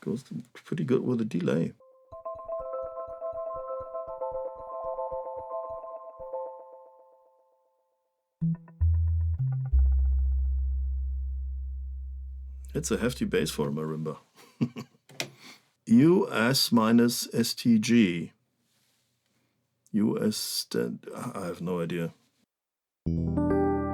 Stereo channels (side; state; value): both; identical; correlation 1.00